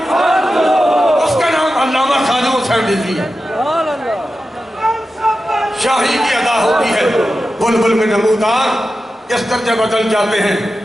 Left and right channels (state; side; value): normal; both; correlation 0.92